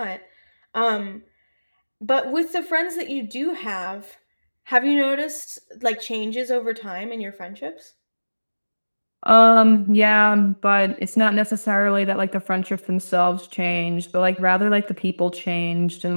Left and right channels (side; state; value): both; inverted; correlation -1.00